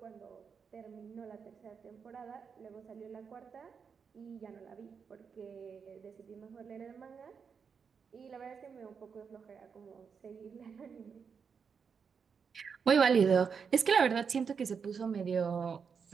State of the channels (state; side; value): quieter; left; 6.2 dB